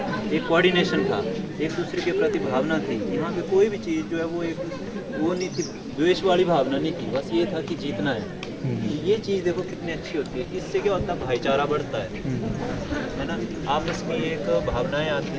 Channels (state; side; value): identical; both; correlation 1.00